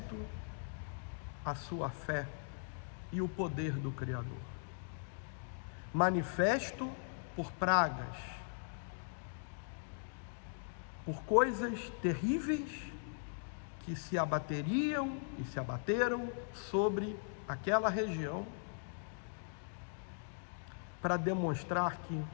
a sua fé e o poder do Criador. Manifesto por pragas, por coisas terríveis que se abateriam e se abateram sobre aquela região, para demonstrar que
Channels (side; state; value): right; silent; digital silence